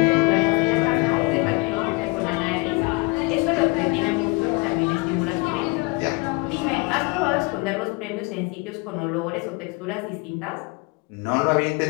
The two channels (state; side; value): quieter; right; 27.2 dB